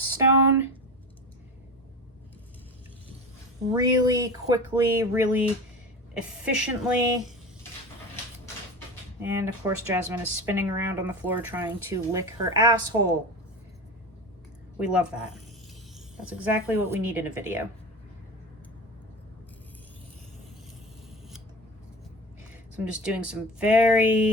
Really quickly, really efficiently. And of course, Jasmine is spinning around on the floor trying to lick her asshole. We love that. That's exactly what we need in a video. So I'm just doing some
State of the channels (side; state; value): both; normal; correlation 0.29